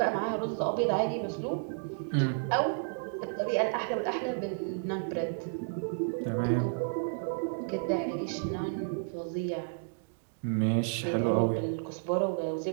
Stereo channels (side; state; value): left; silent; digital silence